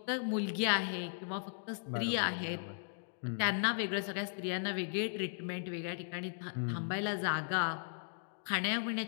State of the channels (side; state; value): right; silent; digital silence